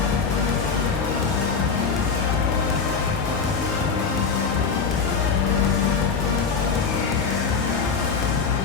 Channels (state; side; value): quieter; right; 5.6 dB